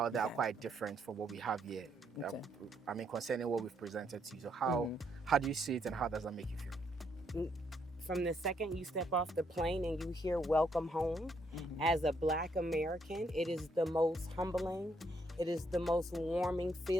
there are quite different from what we have here. Okay. I mean, concerning what we've presented to you. So how do you see it, and how does that make you feel? From the second you step off the plane and you hear welcome home, as a Black American, it is the most humbling, it is the most warming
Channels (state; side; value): normal; both; correlation 0.73